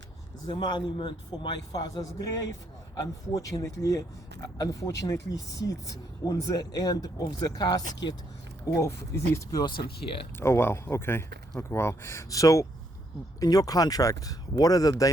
the monument for my father's grave unfortunately sits on the end of the casket of this person here. Oh wow, okay, wow. So in your contract, what are the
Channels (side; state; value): both; normal; correlation 0.73